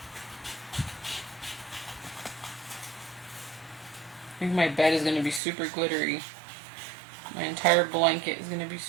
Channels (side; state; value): left; drops out; at 5.4 s